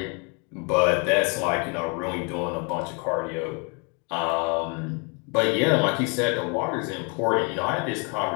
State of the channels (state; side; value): quieter; right; 33.5 dB